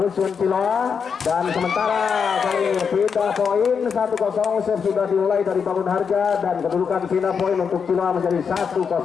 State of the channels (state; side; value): quieter; right; 6.3 dB